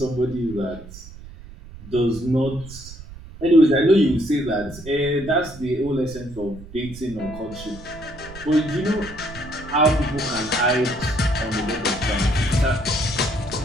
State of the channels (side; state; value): right; noise; rumble, 16 dB below the sound